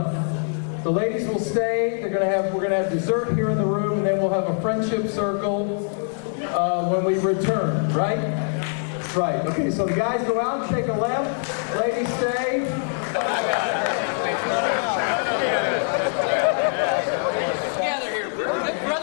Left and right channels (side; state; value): right; silent; 57 dB below the other